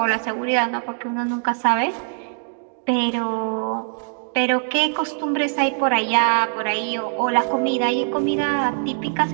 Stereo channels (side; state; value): left; silent; digital silence